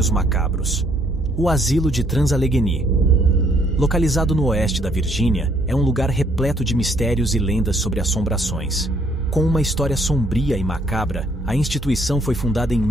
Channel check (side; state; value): both; normal; correlation 0.67